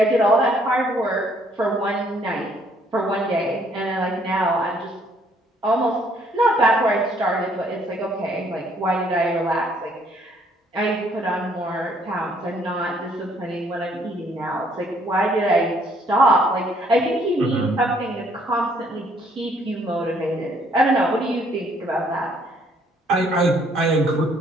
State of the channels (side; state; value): both; normal; correlation 0.65